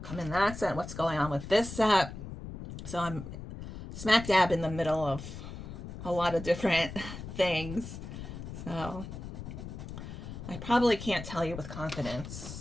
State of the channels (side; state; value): left; noise; rumble, 10 dB below the sound